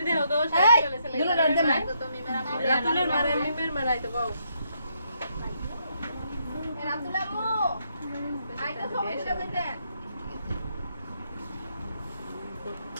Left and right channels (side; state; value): both; inverted; correlation -0.75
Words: দেও তো এই সাইকেল আছে দুলো রাতে না রাতুলের মারে মিমের মারাই তো বাউ রাতুলা মো আইটা সমস্যা কইতে